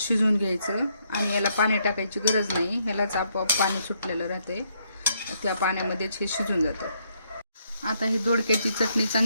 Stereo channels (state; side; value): inverted; both; correlation -0.74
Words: घ्यायचं, आणि याला पाणी टाकायची गरज नाही. ह्यालाच आपोआप पाणी सुटलेलं राहते, त्या पाण्यामध्येच हे शिजून जातं. आता ही दोडक्याची चटणी